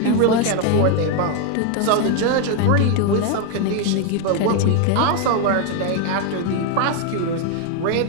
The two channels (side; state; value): both; different; correlation 0.01